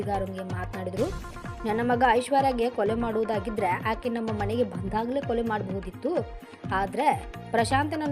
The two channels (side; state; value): both; identical; correlation 1.00